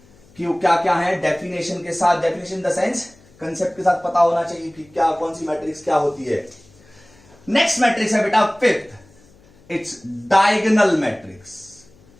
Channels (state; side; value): noise; left; hum, 28 dB below the sound